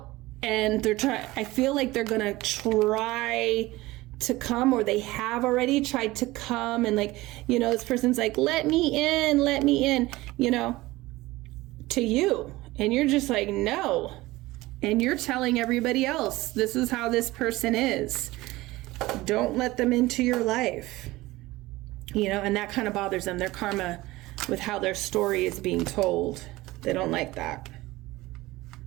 and I feel like they're gonna try to come, or they have already tried to come, and, like, you know, this person's like, let me in, you know, to you. And you're just like, no. And you're telling everybody else, this is how this person is. Don't let them into your life, you know, and that kind of bothers them. Their karma with how their story is being told. They don't like that.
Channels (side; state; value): left; quieter; 19.2 dB